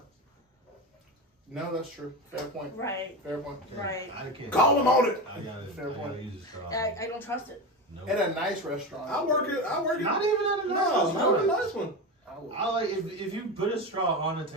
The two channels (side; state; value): both; normal; correlation 0.21